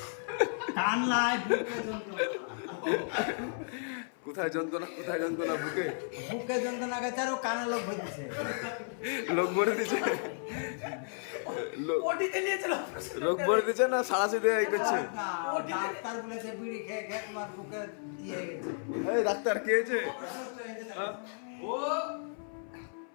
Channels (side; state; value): right; silent; 56 dB below the other